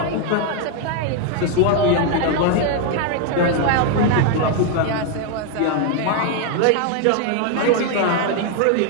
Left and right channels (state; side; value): different; both; correlation 0.01